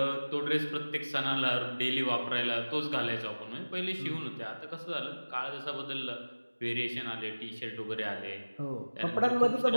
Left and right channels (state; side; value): inverted; both; correlation -1.00